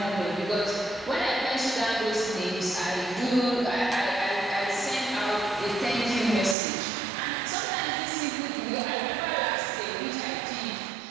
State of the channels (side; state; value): left; drops out; at 6.6 s